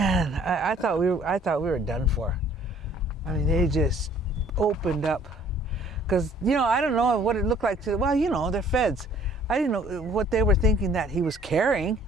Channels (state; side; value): normal; both; correlation 0.57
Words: I thought we were done for. I mean, they just opened up. Because, I don't know what it looked like well, they're feds. I didn't know what they were thinking that he was carrying.